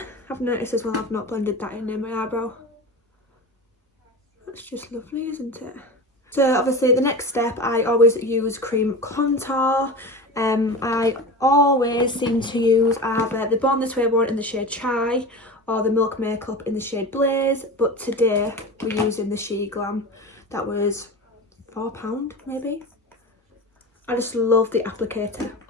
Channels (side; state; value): both; normal; correlation 0.30